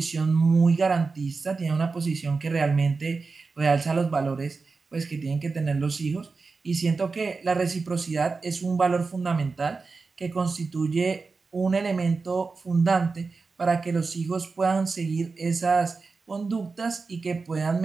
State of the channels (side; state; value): left; quieter; 4.3 dB